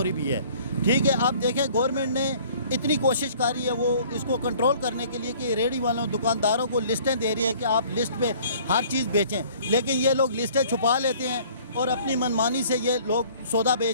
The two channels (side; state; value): both; inverted; correlation -0.54